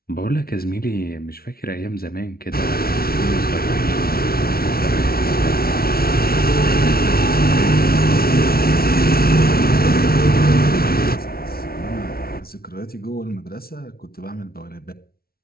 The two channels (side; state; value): right; late; 0.44 ms